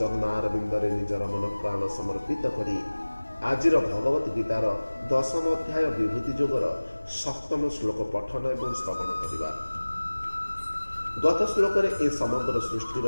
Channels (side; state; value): both; inverted; correlation -1.00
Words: निजर मन प्राण समर्पित करी आजिर भगवत गीतार 10म अध्याय विभूति जोगर 7म श्लोक पठन एवं श्रवण करिबा। गत श्लोक ए समग्र सृष्टिर